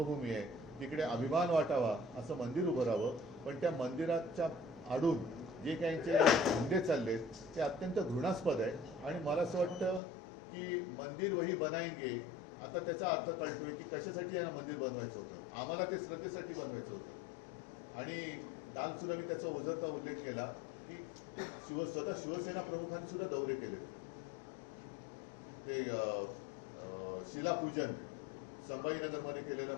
आहे तिकडे अभिमान वाटावा असं मंदिर उभं राहावं. पण त्या मंदिराच्या आडून जे काहींचे धंदे चाललेत ते अत्यंत घृणास्पद आहे. आणि मला असं वाटतं की मंदिर वही बनाएंगे, आता त्याचा अर्थ कळतोय की कशासाठी यांना मंदिर बनवायचं होतं. आम्हाला ते श्रद्धेसाठी बनवायचं होतं. आणि काल सुद्धा मी त्याचा ओझरता उल्लेख केला की स्वतः शिवसेना प्रमुखांनी सुद्धा दौरे केले. ते शिलापूजन संभाजीनगरमध्ये केलेलं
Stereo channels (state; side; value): drops out; right; at 10.0 s